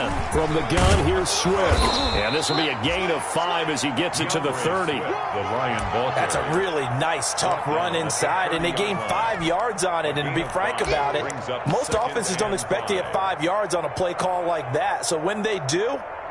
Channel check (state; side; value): identical; both; correlation 1.00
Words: From the gun, here's Swift. And this will be a gain of 5 as he gets it to the 30. That's a really nice, tough run inside, and they gained 5 yards on it. And to be frank about it, most offenses don't expect to get 5 yards on a play call like that. So when they do,